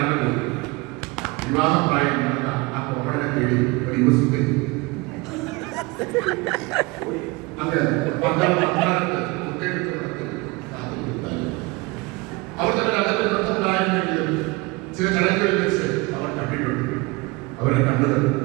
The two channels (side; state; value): left; quieter; 24.5 dB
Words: വിവാഹം പ്രായം നടന്ന ആ കോമളനെ തേടി ഒരു യുവസുന്ദരി അവർ തന്നെ അകത്ത് ബന്ധമുണ്ടായിരുന്നെങ്കിലും ചില ചടങ്ങുകളിൽ വെച്ച് അവർ കണ്ടിട്ടുണ്ട്. അവരെ കണ്ടത്